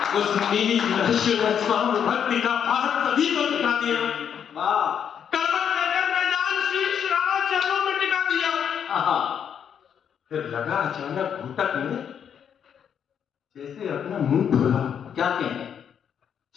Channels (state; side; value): quieter; right; 8.2 dB